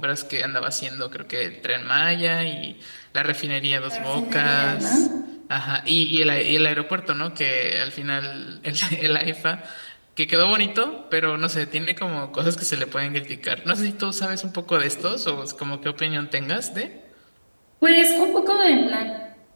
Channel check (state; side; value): inverted; both; correlation -1.00